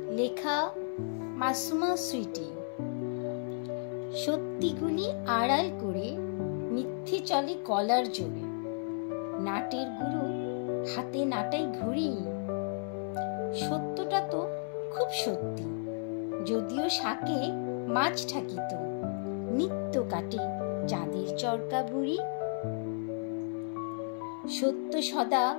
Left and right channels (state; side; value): silent; right; 56 dB below the other